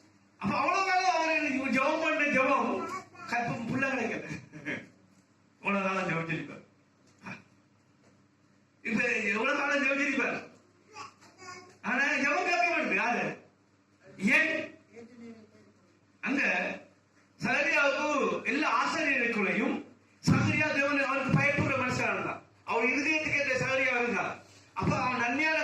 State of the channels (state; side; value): identical; both; correlation 1.00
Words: அப்ப அவ்வளவு காலம் அவர் ஜபம் பண்ண ஜபம் கற்பம் புள்ள கிடைக்கல. அவ்வளவு காலம் ஜபிச்சிருப்பார். இப்ப எவ்வளவு காலம் ஜபிச்சிருப்பார், ஆனா ஜபம் கேட்க மாட்டேங்குது. யாரு? ஏன்? அங்க சகரியாவுக்கு எல்லா ஆசிரியர்களுக்குள்ளையும் சகரியா தேவன் அவருக்கு பயப்படுற மனுஷனா இருந்தான். அவர் இருதயத்துக்கு ஏற்ற சகரியா இருந்தான். அப்ப அவன் நன்மையான